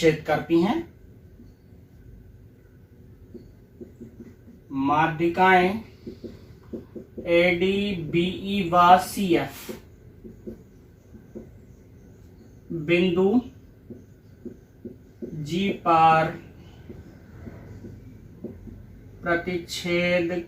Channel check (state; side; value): identical; both; correlation 1.00